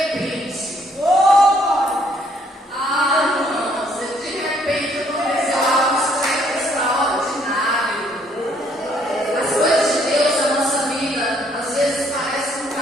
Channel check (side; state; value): both; normal; correlation 0.66